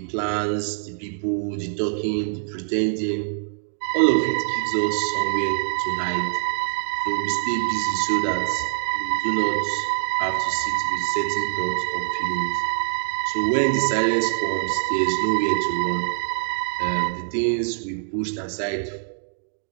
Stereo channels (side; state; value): left; silent; digital silence